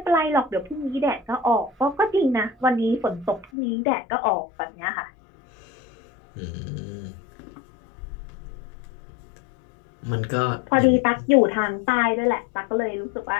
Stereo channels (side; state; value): right; drops out; at 3.5 s